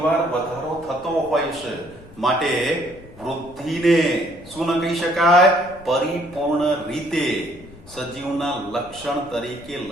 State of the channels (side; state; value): left; noise; rumble, 21 dB below the sound